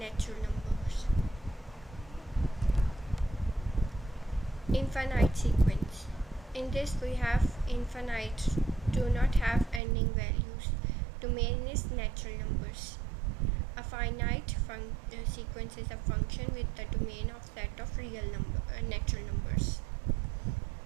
numbers. Infinite sequence. In this we have infinite, do not have ending values. Domain is natural numbers. A finite sequence is a function with the domain of set of real natural numbers.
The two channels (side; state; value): left; drops out; at 9.8 s